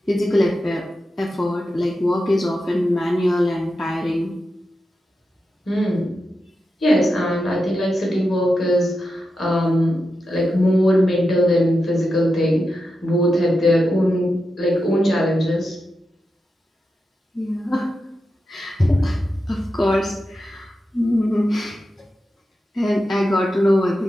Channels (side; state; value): both; normal; correlation 0.89